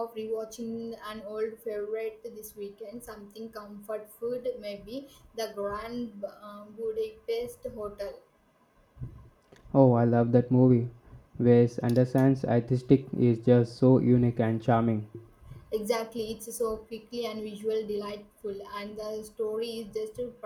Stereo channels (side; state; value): both; identical; correlation 1.00